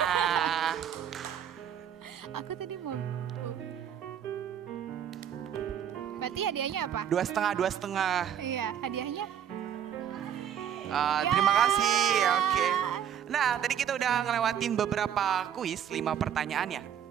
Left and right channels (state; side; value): quieter; left; 9.1 dB